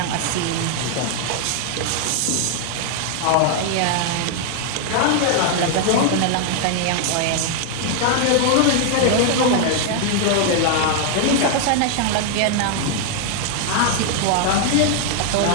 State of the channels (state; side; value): different; both; correlation 0.00